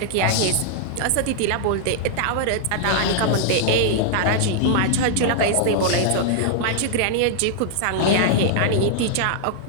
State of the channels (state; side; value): different; both; correlation -0.01